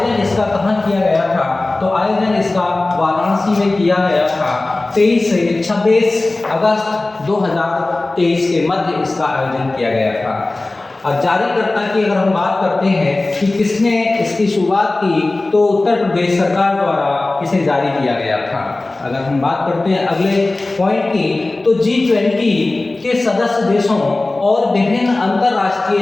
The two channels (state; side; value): quieter; right; 3.0 dB